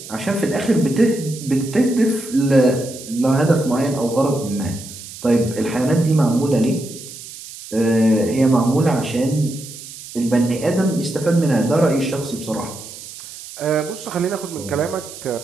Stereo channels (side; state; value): right; noise; hiss, 14 dB below the sound